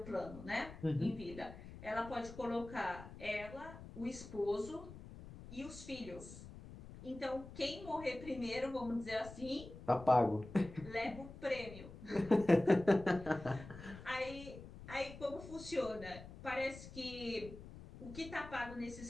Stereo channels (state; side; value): noise; left; rumble, 14 dB below the sound